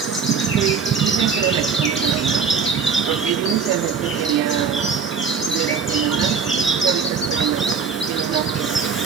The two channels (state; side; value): quieter; left; 5.9 dB